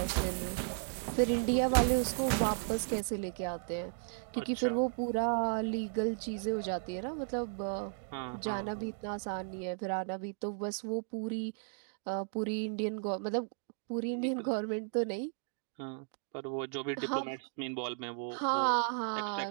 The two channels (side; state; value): left; silent; digital silence